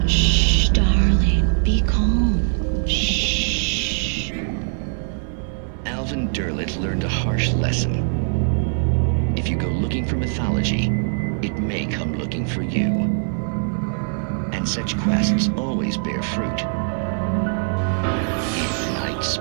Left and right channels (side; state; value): left; silent; 62 dB below the other